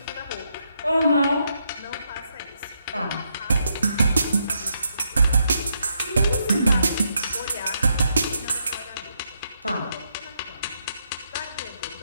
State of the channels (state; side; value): inverted; both; correlation -0.78